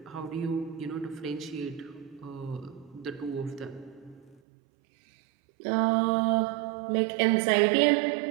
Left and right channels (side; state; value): left; drops out; at 4.4 s